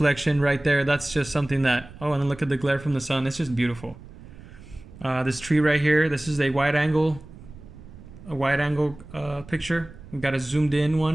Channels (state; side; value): noise; right; rumble, 18 dB below the sound